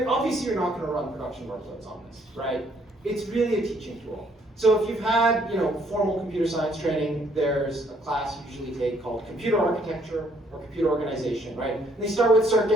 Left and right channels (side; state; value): both; normal; correlation 0.66